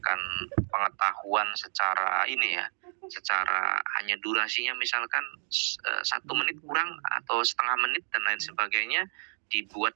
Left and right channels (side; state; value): left; silent; 58 dB below the other